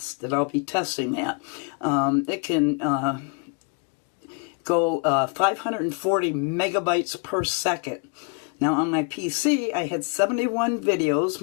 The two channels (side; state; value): right; quieter; 35.1 dB